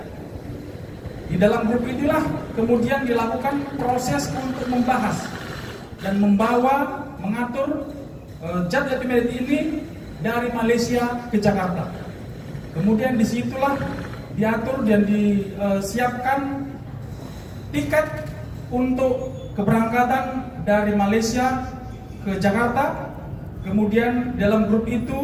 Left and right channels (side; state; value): both; identical; correlation 1.00